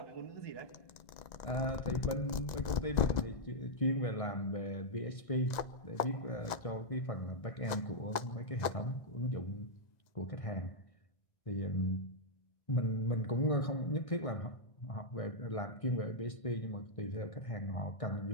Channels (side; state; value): right; late; 1.9 ms